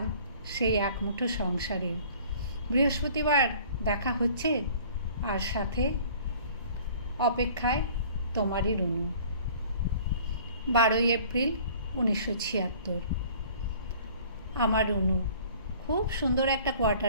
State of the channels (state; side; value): inverted; both; correlation -0.50